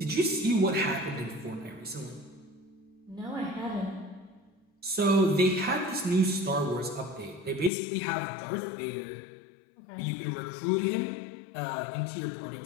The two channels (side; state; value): right; drops out; at 7.7 s